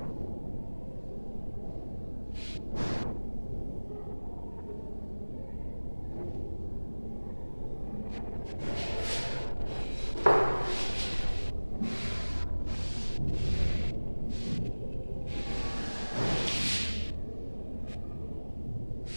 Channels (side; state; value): both; inverted; correlation -1.00